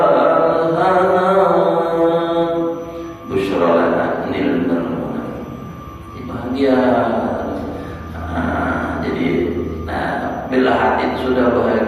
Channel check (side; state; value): both; identical; correlation 1.00